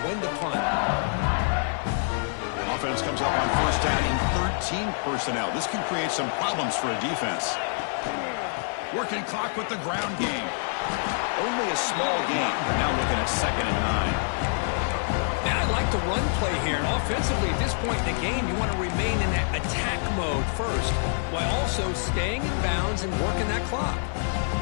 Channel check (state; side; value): silent; right; 61 dB below the other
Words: when to punt. Offense comes up on first down in 13 personnel. This can create some problems for a defense. Working clock with the ground game. Only a small game. Now looking at 2nd and 9. Now I like the run play here. And offensively, at this point in the game, you want to remain in that attack mode first, while also staying in bounds and working that clock.